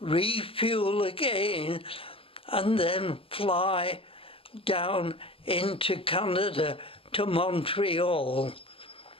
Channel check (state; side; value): late; right; 0.26 ms